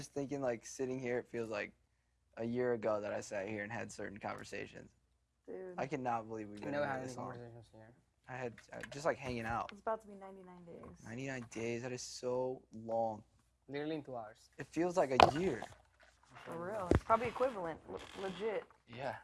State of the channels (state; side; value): identical; both; correlation 1.00